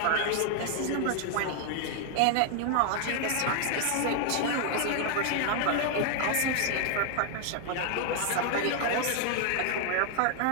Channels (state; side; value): different; both; correlation 0.00